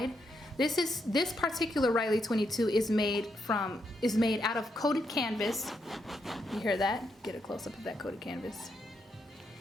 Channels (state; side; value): normal; both; correlation 0.80